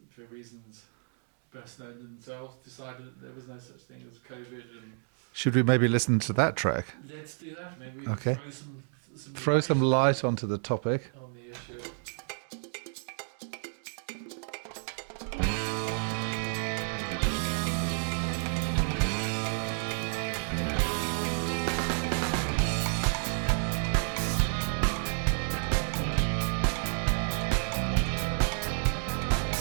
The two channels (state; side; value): silent; left; 56 dB below the other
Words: for reasons best known to themselves, decided that there was no such thing as COVID. And should we maybe listen to that track? Let's do that. Maybe we can throw some light onto the topic, on the issue.